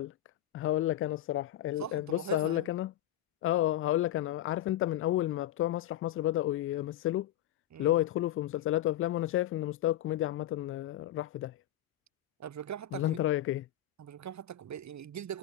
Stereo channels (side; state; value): right; quieter; 11.9 dB